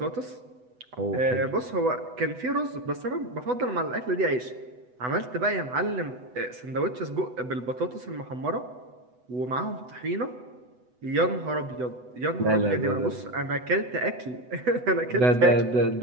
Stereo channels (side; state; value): left; late; 8.0 ms